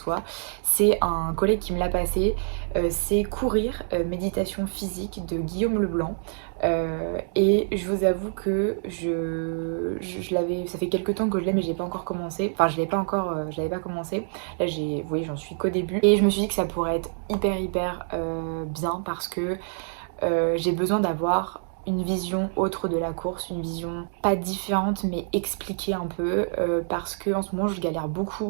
c'est un collègue qui me l'a passé. C'est Courir, méditation physique de Guillaume Leblanc. Et je vous avoue que je l'avais, ça fait quelques temps que je l'ai, mais j'ai pas encore commencé. Enfin, je l'avais pas commencé. Là, vous voyez, j'en suis qu'au début. Et je me suis dit que ça pourrait être hyper bien parce que j'ai besoin d'avoir une vision autre de la course, une vision pas différente mais expliquée un peu, parce que en ce moment je galère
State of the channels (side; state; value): left; silent; digital silence